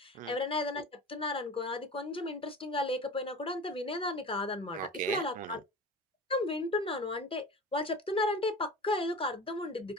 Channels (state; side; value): normal; both; correlation 0.35